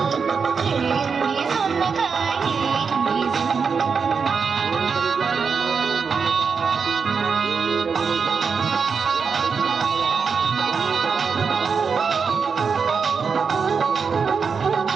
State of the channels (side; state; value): left; quieter; 5.6 dB